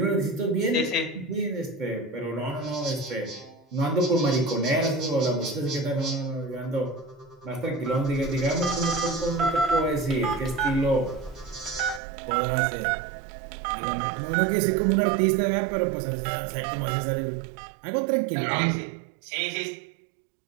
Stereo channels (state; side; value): drops out; left; at 12.0 s